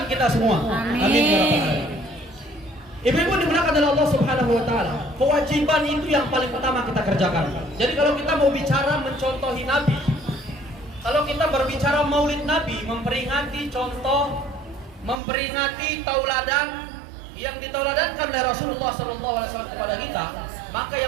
kita semua. Amin. Amin ya rabbal alamin. Ibu-ibu dimuliakan oleh Allah Subhanahu wa taala. Kewajiban itu yang paling utama kita kerjakan. Jadi kalau kita mau bicara mencontohi Nabi, kalau kita berbicara Maulid Nabi, memperingati contoh, memperingati tauladan yang ditauladankan oleh Rasulullah SAW kepada kita, maka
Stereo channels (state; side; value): drops out; left; at 15.2 s